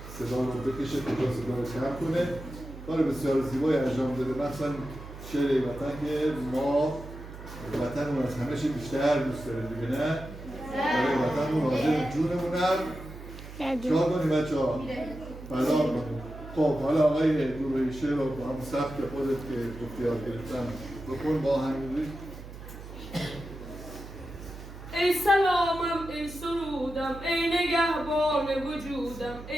صدا رو بکشه کجا صدا رو کم کنه. کار بسیار زیبایی انجام داده، مثلا شعر ای وطن که ما وطنمون از همه چی بیشتر دوست داریم دیگه، نه؟ برای وطنمون حاضر جونمونم چرا کنیم بچه ها؟ فدا کنیم. خب حالا آقای گروهی شعر رو با هم سبک خودت که گفتی یاد گرفتم بکن با همین. ای سلامم ای سرودم ای نگهبان وجودم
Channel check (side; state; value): right; noise; hum, 13 dB below the sound